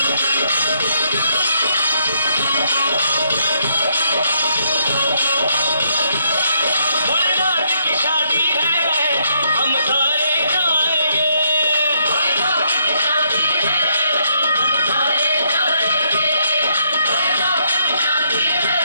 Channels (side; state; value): both; inverted; correlation -0.73